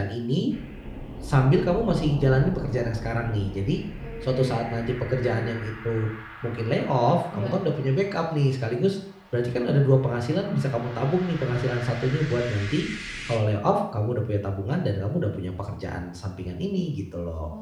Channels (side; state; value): both; identical; correlation 1.00